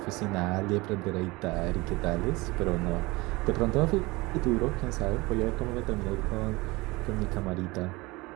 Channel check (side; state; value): left; quieter; 22.9 dB